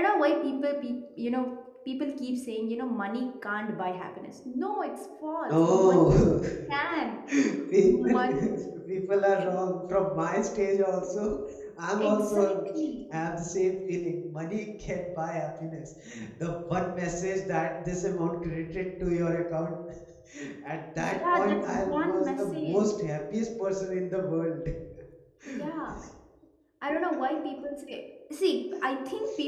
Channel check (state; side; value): identical; both; correlation 1.00